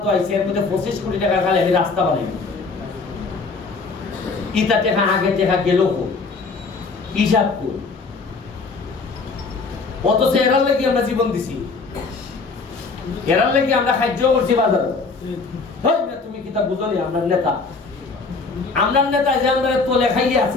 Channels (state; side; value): quieter; right; 4.3 dB